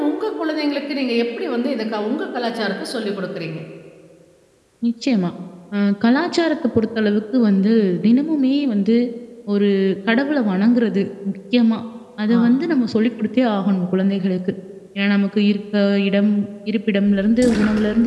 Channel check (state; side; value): identical; both; correlation 1.00